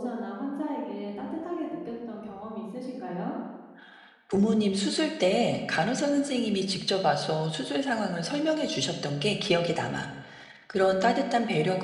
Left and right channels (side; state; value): both; identical; correlation 1.00